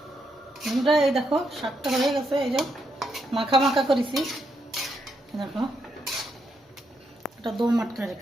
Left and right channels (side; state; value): both; normal; correlation 0.79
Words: আমরা এই দেখো শাকটা হয়ে গেছে। এই যে মাখা মাখা করেছি, দেখো এটা দো মাটকা